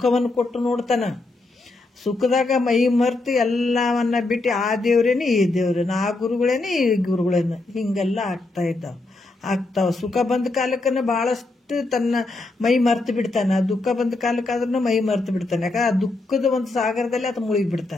ಕೊಟ್ಟು ನೋಡ್ತಾನ. ಸುಖದಾಗ ಮೈ ಮರ್ತು ಎಲ್ಲವನ್ನ ಬಿಟ್ಟು ಆ ದೇವ್ರೇನೆ ಈ ದೇವ್ರೇನೆ, ಆ ಗುರುಗಳೇನೆ ಈ ಗುರುಗಳೇನೆ ಹಿಂಗೆಲ್ಲ ಆಗ್ತಾವ. ಸುಖ ಬಂದ ಕಾಲಕ್ಕನ ಬಹಳಷ್ಟು ತನ್ನ ಮೈ ಮರ್ತು ಬಿಡ್ತಾನೆ. ದುಃಖ ಬಂದ ಕಾಲಕ್ಕಾದ್ರೂ ಮೈ ಮರ್ತು ಬಿಡ್ತಾನೆ. ಯಾಕಂದ್ರೆ ಆ ದುಃಖದ ಒಂದು ಸಾಗರದಲ್ಲಿ ಆತ ಮುಳುಗಿ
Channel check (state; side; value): quieter; right; 3.1 dB